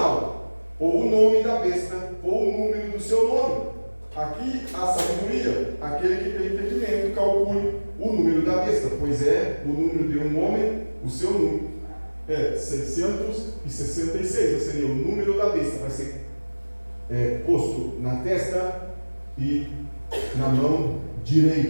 ou o nome da besta, ou o número do seu nome. Aqui a sabedoria, aquele que tem entendimento, calcule o número da besta, pois é o número de um homem, o seu número é 666, ou seja, o número da besta vai ser posto na testa e na mão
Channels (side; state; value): both; inverted; correlation -1.00